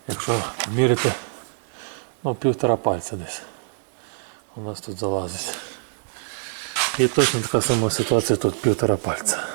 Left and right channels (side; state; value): left; silent; digital silence